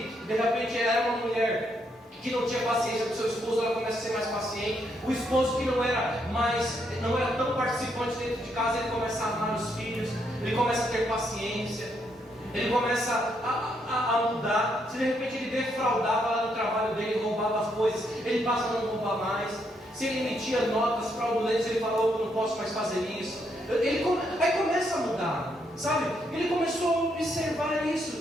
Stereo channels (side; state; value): both; normal; correlation 0.76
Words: de repente era uma mulher que não tinha paciência com seu esposo, ela começa a ser mais paciente. O esposo que não era tão participante dentro de casa, ele começa a amar os filhos, ele começa a ter paciência, ele começa a mudar. Se de repente ele defraudava lá no trabalho dele, roubava as coisas, ele passa a não roubar mais. Se ele emitia notas fraudulentas, ele falou, eu não posso mais fazer isso. Aí começa a mudar, sabe? Ele começou a observar